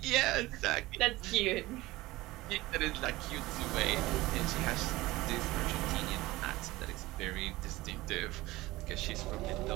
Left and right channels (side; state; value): left; quieter; 19.0 dB